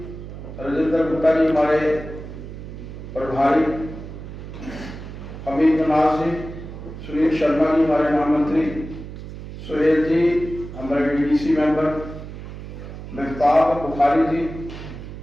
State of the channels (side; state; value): right; noise; hum, 11 dB below the sound